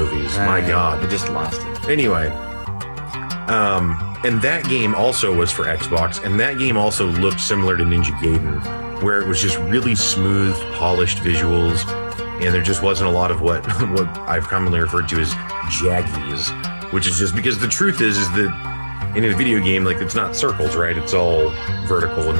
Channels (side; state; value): both; inverted; correlation -1.00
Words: My God. I just lost it. Anyway, and that game also was for Xbox, and that game also looked similar to Ninja Gaiden, where it was just really smooth, polished visuals, and there just wasn't a lot of what I've commonly referred to as jaggies, which is just because the truth is that in a video game, like, it's not circles, right? It's all vertical and